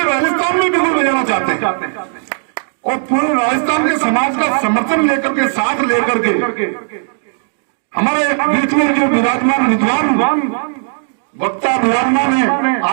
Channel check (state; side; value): silent; left; digital silence